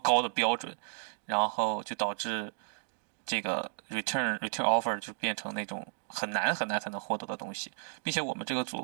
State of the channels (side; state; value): left; silent; digital silence